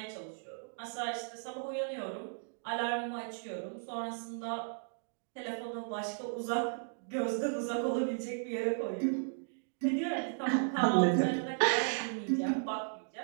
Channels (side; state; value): left; silent; digital silence